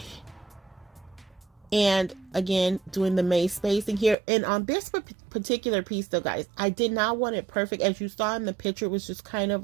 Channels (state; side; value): drops out; left; at 4.2 s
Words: And again, doing the maze spacing here. And on this particular piece though, guys, I did not want it perfect. As you saw in the picture, it was just kind